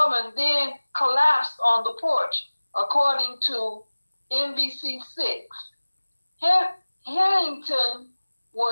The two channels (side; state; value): both; inverted; correlation -1.00